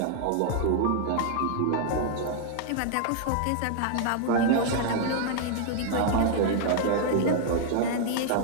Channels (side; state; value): both; different; correlation 0.00